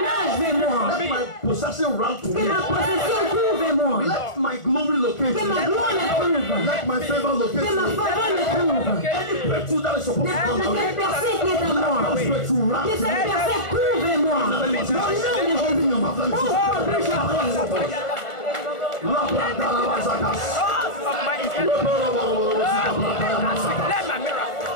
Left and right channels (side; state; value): right; late; 1.4 ms